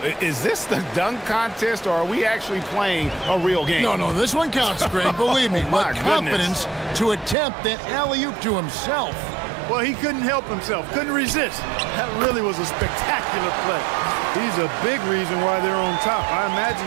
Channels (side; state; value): left; drops out; at 7.4 s